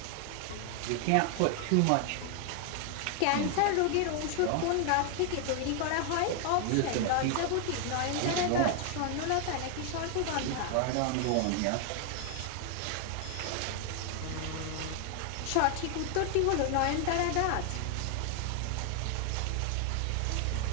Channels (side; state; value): both; different; correlation 0.00